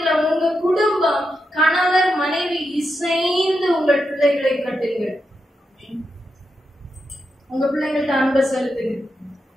உங்க குடும்பம், கணவர் மனைவி இசைந்து உங்கள் பிள்ளைகளை கட்டுங்கள். உங்க பிள்ளைங்கள்ட்ட அன்பை செலுத்துங்க.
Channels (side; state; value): both; normal; correlation 0.86